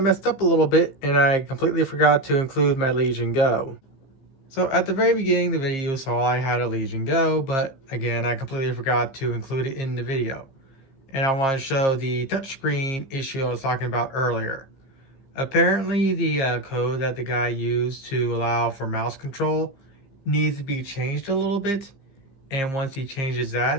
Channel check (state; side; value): late; right; 15 ms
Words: up a little bit and I completely forgot to include my Legion Go. So at the very beginning of the video, you saw I had a Legion Go, but again, I completely forgot to include it in the video. And I want to show the touchscreen issue I was talking about earlier. Apparently the code that the guy used to allow for mouse control needs to be changed a little bit. And once he changes